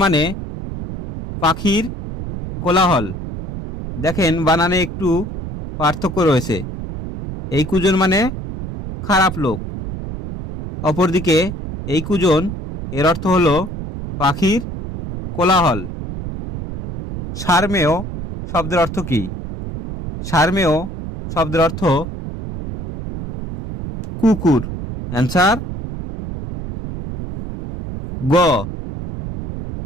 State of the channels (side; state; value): right; noise; rumble, 8 dB below the sound